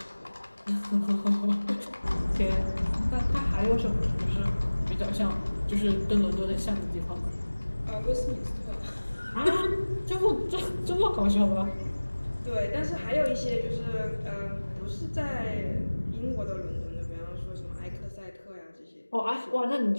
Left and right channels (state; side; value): inverted; both; correlation -1.00